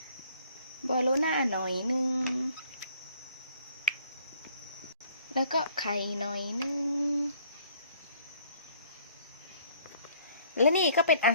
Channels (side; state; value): both; inverted; correlation -0.59